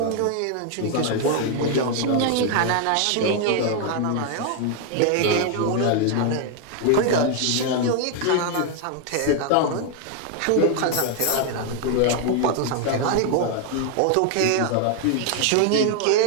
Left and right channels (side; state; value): both; different; correlation 0.00